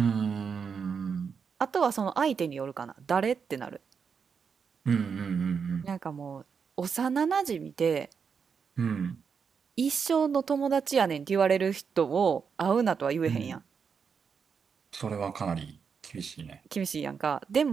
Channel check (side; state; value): left; quieter; 6.2 dB